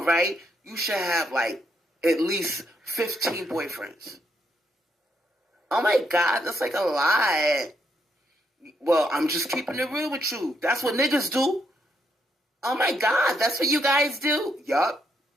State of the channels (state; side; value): normal; both; correlation 0.77